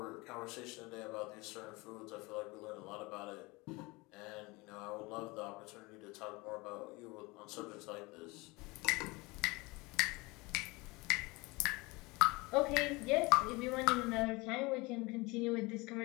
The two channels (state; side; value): quieter; right; 24.4 dB